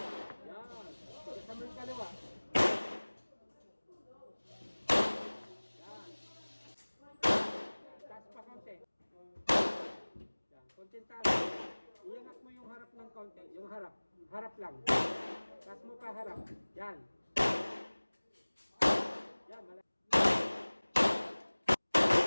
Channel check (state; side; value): inverted; both; correlation -1.00